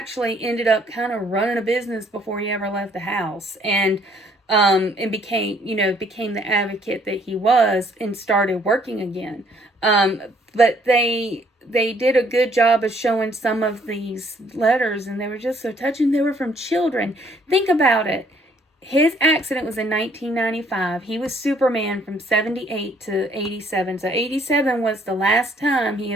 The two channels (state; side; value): normal; both; correlation 0.64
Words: ended up kind of running a business before he ever left the house, and became the advocate that he was, and started working again. But they did a good job of showing some of these letters, and they were just so touching. They were from children. Think about it. His accident was in 1995. He was Superman from 78 to 87. So 87 was the last time he